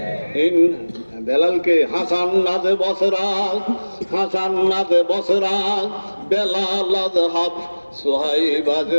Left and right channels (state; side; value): inverted; both; correlation -1.00